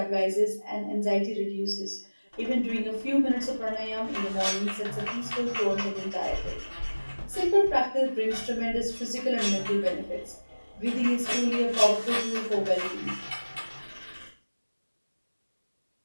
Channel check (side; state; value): both; inverted; correlation -1.00